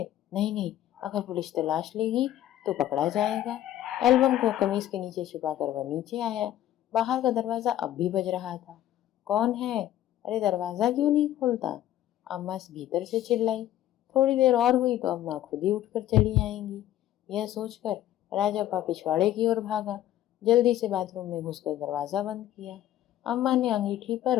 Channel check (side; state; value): right; quieter; 12.8 dB